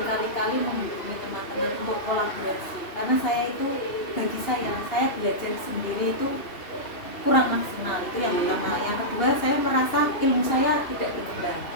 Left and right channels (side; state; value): right; late; 3.0 ms